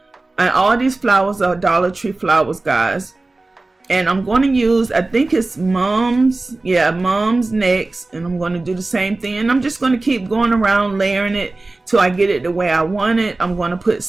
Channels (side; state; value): left; quieter; 3.2 dB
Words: and all these flowers are Dollar Tree flowers, guys. And I'm going to use, I think it's Mom's next, and I'm going to do the same thing, and I'm just going to keep going around layering it till I get it the way I want it. I'm going to put